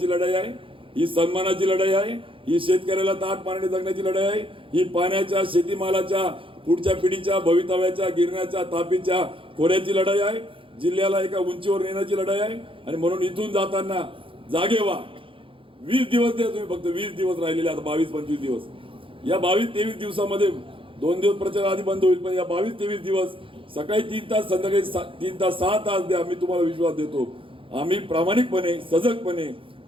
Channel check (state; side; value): late; left; 0.25 ms